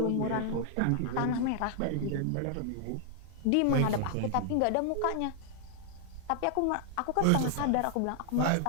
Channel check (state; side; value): different; both; correlation 0.00